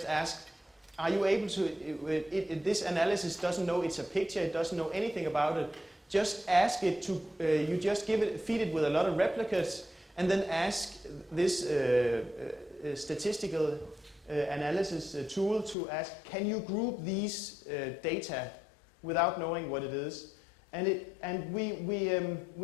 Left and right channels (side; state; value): right; drops out; at 15.8 s